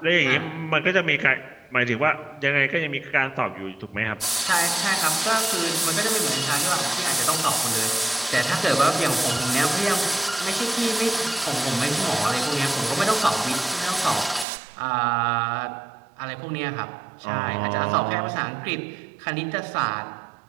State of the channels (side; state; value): left; drops out; at 14.5 s